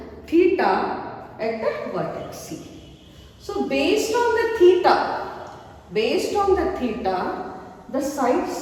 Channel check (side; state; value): both; identical; correlation 1.00